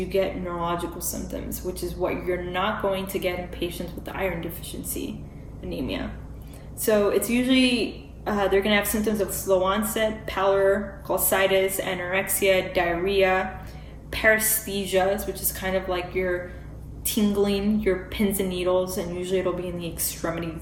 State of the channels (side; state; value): both; identical; correlation 1.00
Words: get neurological symptoms, which is what you're not going to get in patients with the iron deficiency anemia. So it's usually, they're going to have symptoms of slow onset, pallor, cholestitis, anorexia, diarrhea, paresthesias, which is kind of like you're tingling your pins and needles, and usually it'll be in the